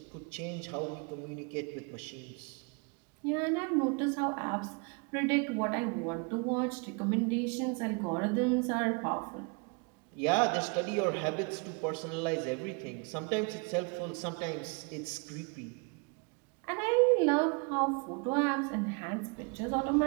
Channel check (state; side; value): quieter; left; 33.3 dB